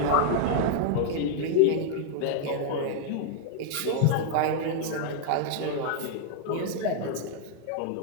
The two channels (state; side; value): different; both; correlation -0.01